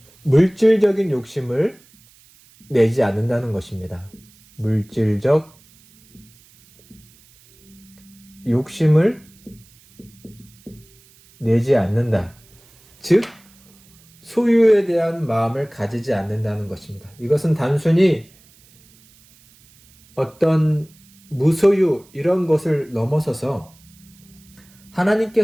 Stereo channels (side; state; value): right; noise; hiss, 28 dB below the sound